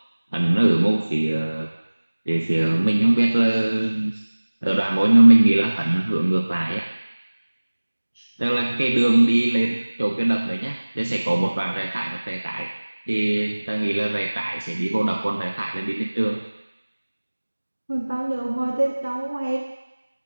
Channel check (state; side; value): inverted; both; correlation -1.00